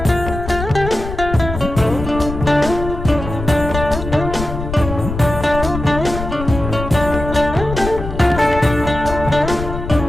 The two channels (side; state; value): left; noise; rumble, 7 dB below the sound